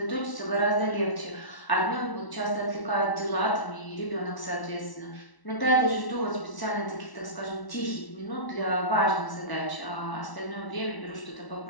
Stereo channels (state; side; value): late; right; 1.0 ms